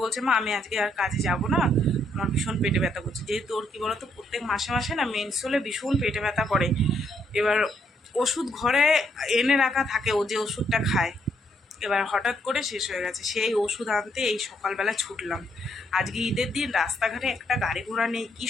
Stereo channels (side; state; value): both; normal; correlation 0.73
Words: বলছে, মা আমি আজকে আর কাজে যাব না, আমার ভীষণ পেটে ব্যথা করছে। যেহেতু ওর কী বলতো, প্রত্যেক মাসে মাসে না মেন্স হলে ভীষণ পেটে ব্যথা করে। এবার ওষুধ ঘরে এনে রাখা থাকে, ও যে ওষুধটা খায়, এবার হঠাৎ করে শেষ হয়ে গেছে। সেই ওষুধ আনতে এই সকালবেলা ছুটলাম। আজকে ঈদের দিন, রাস্তাঘাটে একটা গাড়ি ঘোড়া নেই, কী